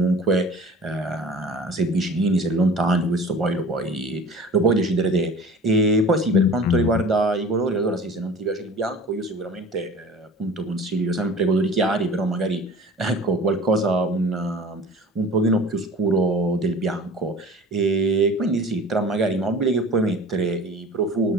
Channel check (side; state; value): both; normal; correlation 0.42